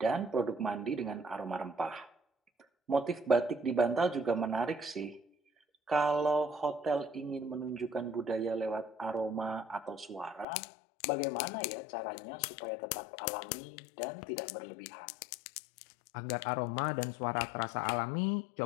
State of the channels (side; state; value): right; drops out; at 10.5 s